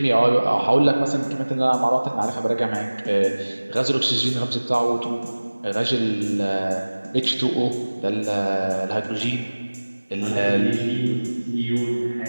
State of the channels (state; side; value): inverted; both; correlation -1.00